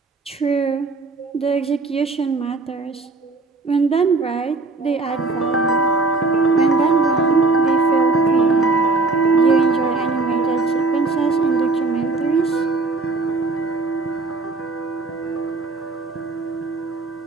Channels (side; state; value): left; quieter; 3.6 dB